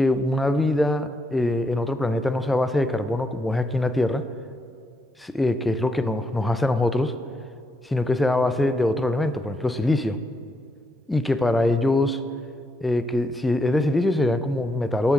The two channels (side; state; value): both; normal; correlation 0.80